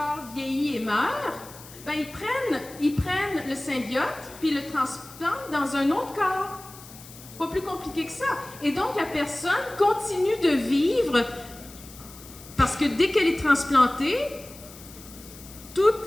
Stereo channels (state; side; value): noise; left; hiss, 18 dB below the sound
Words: vieillit et meurt, ben, ils prennent le symbiote puis le transplantent dans un autre corps. Pas plus compliqué que ça. Et donc, la personne continue de vivre parce que dès qu'elle est transplantée,